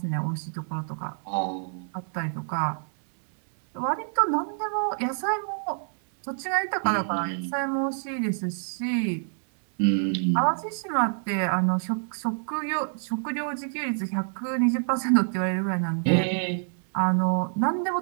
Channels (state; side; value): silent; left; digital silence